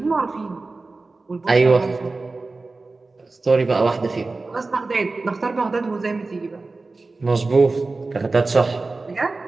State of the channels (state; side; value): quieter; left; 3.6 dB